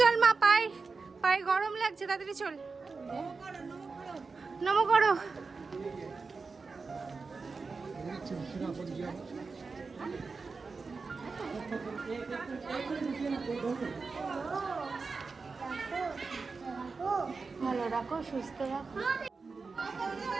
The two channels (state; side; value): quieter; left; 4.4 dB